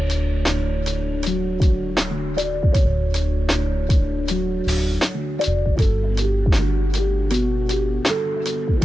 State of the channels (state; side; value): normal; both; correlation 0.93